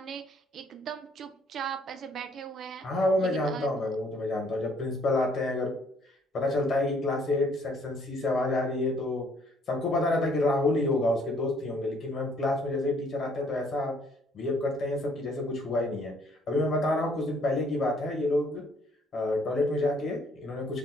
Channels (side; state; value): both; normal; correlation 0.64